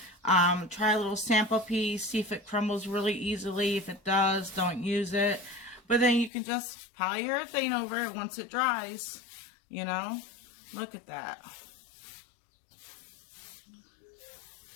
Try a little sample piece, see if it crumbles really easily. If it does, don't use it. But then you can just polyurethane over it once it dries, you know. Look at that.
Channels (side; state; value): right; drops out; at 6.3 s